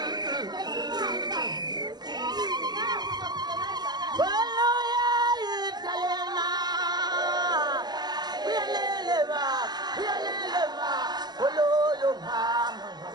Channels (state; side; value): late; left; 0.20 ms